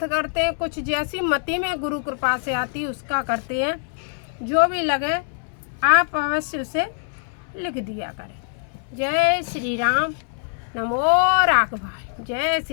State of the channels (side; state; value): right; silent; 63 dB below the other